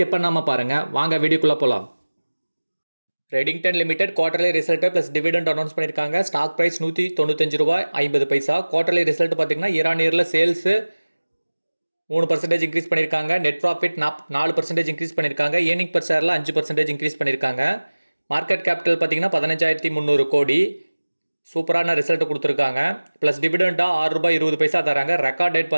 பண்ணாமல் பாருங்கள். வாங்க வீடியோக்குள்ளே போகலாம். Redington limited quarterly result plus dividend announce பண்ணியிருக்காங்க. Stock price ₹195.50. குவார்டர்லி ரிசல்ட் பார்த்தீங்கன்னா இயர் சேல்ஸ் 3% இன்க்ரீஸ் பண்ணியிருக்காங்க. நெட் ப்ராஃபிட் 4% இன்க்ரீஸ் பண்ணியிருக்காங்க. ஏர்னிங் பர் ஷேரில் 5% இன்க்ரீஸ் பண்ணியிருக்காங்க. மார்க்கெட் கேபிட்டல் பார்த்தீங்கன்னா 15,300 கோடி. சூப்பரான ரிசல்ட் கொடுத்துருக்காங்க. ப்ளஸ் டிவிடெண்டாக ₹6.20 தராங்க. ரெக்கார்ட் டேட்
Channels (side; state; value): both; inverted; correlation -1.00